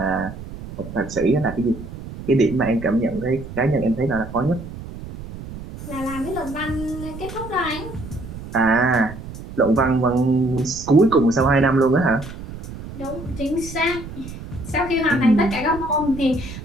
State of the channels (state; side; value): noise; right; rumble, 12 dB below the sound